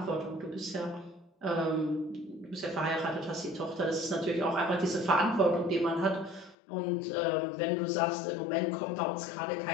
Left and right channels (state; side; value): drops out; right; at 6.6 s